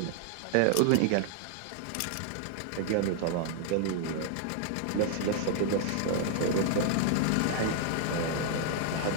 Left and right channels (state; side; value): different; both; correlation 0.00